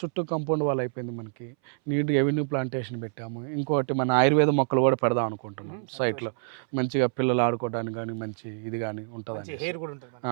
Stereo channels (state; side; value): silent; left; 60 dB below the other